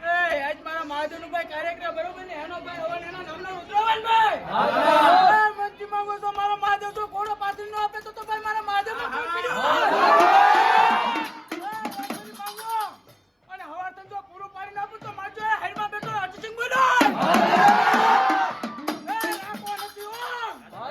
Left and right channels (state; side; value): identical; both; correlation 1.00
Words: આજ મારા મહાદેવનું ભાઈ કાર્યક્રમ બરોબર ને? એનો ભાઈ હવન એના નામનો રુદ્રવાન ભાઈ. મંત્રી માંગો છો મારો મહાદેવ જો ઘોડો પાછળ નો આપે તો ભાઈ મારા મહાદેવ નો અને હવાર જો પૂરું પાડી નાખું તો મારજો હેરમાં બેઠો અર્જુન બોલો.